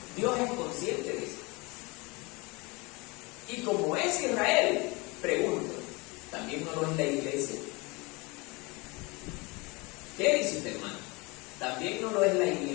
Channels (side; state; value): right; quieter; 26.3 dB